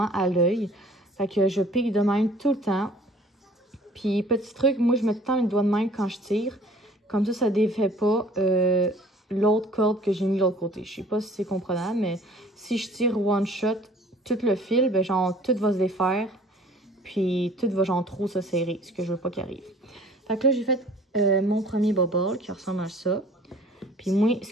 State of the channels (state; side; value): normal; both; correlation 0.51